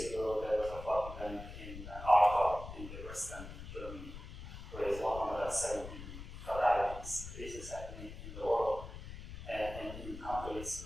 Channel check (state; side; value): noise; left; rumble, 11 dB below the sound